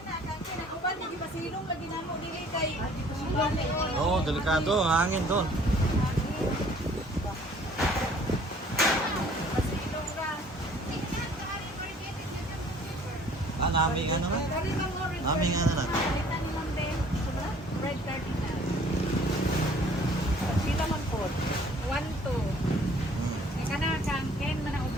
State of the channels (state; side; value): normal; both; correlation 0.55